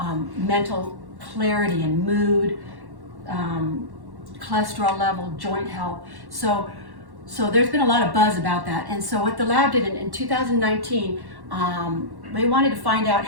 mental clarity and mood, cholesterol level, joint health. So there's been a lot of buzz about that. And so what the lab did in 2019, they wanted to find out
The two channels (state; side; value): late; left; 1.1 ms